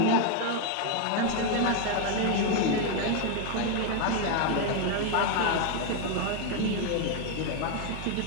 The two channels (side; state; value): both; different; correlation 0.01